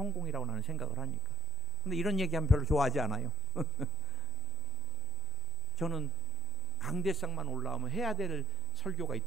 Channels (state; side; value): quieter; right; 3.6 dB